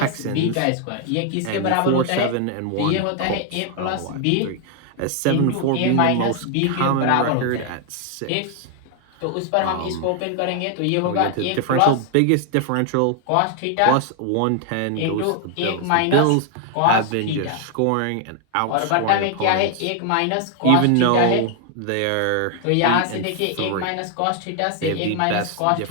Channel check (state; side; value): different; both; correlation 0.00